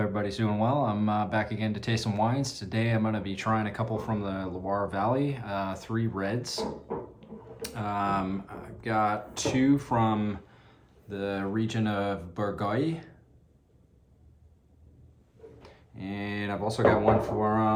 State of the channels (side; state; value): both; identical; correlation 1.00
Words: doing well. I'm back again to taste some wines. Today I'm going to be trying a couple from the Loire Valley, three reds. I've got two from the region of Bourgueil. And I've also got one